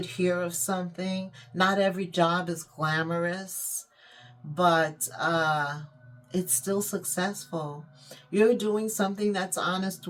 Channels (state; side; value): identical; both; correlation 1.00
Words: hear of something. Not every job is glamorous, but it's still successful. You're doing something that's honest